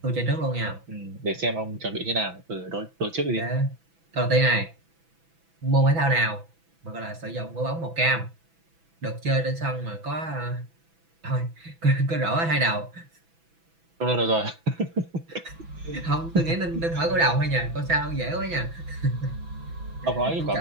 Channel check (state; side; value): late; left; 6.0 ms